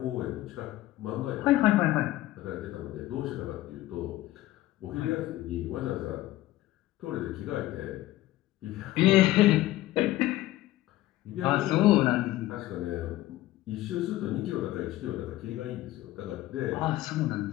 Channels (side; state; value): right; quieter; 16.0 dB